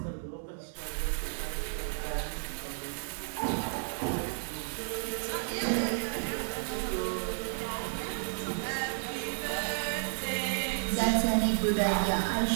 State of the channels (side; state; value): left; silent; digital silence